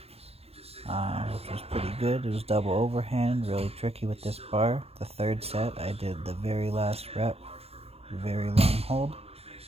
was pretty good. It was double overhand, really tricky with this bar. The third set, I did the very last rep, very long hold.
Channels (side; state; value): left; late; 0.29 ms